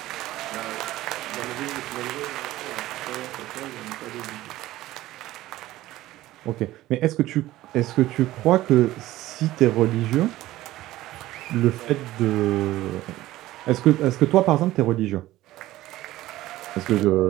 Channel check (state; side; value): quieter; left; 16.0 dB